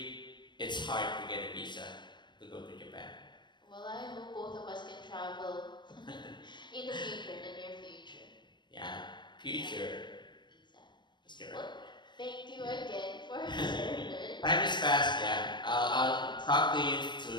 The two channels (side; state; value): right; late; 0.22 ms